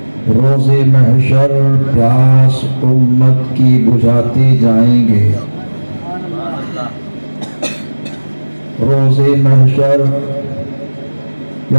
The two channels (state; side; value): inverted; both; correlation -1.00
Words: روز محشر پیاس امت کی بجھاتے جائیں گے، روز محشر